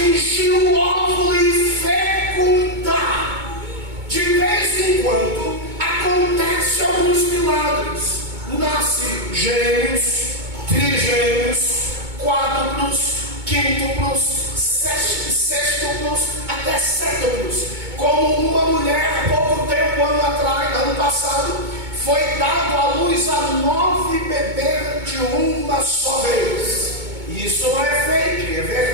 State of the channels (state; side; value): late; left; 2.2 ms